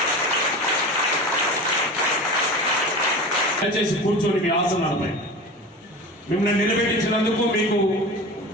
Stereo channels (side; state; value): both; normal; correlation 0.32